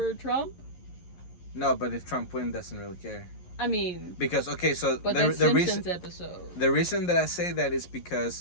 Trump? No, but if Trump wins, doesn't really care. I mean, because but that's Simpsons episode. The reason that I say that is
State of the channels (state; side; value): late; right; 11 ms